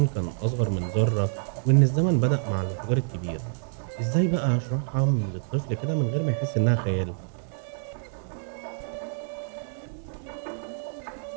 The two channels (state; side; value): silent; left; 60 dB below the other